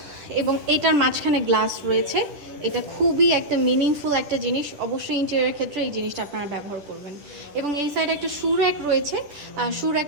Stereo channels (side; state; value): left; late; 10 ms